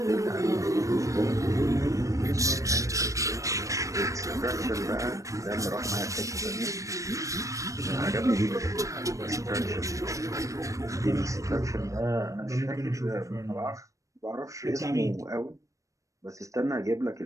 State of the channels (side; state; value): left; late; 0.16 ms